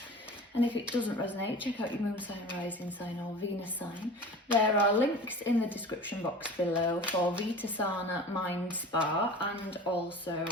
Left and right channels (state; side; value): normal; both; correlation 0.38